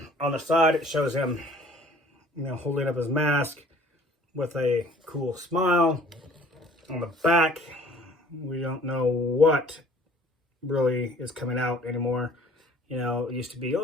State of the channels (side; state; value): both; normal; correlation 0.53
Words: the side, it shows him, holding up his mask with a cool smile. On the back, we don't know what really is coming out anymore. You know, it used to be,